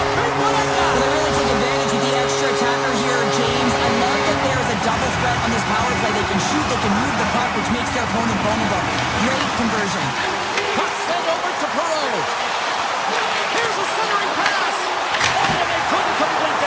a big one at that. They really take advantage of the extra attacker here, James. I love that there is a double threat on this power play. They can shoot, they can move the puck, which makes their opponent vulnerable. Great conversion. Puck sent over to Perreault. Here's a centering pass. Oh, and they couldn't complete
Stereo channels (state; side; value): identical; both; correlation 1.00